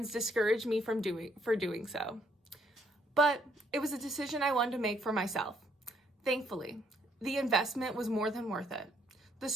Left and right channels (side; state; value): both; normal; correlation 0.69